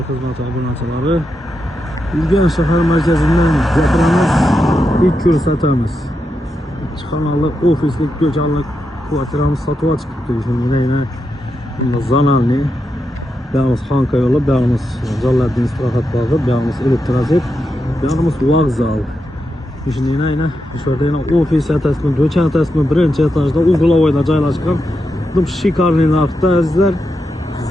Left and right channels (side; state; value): both; normal; correlation 0.86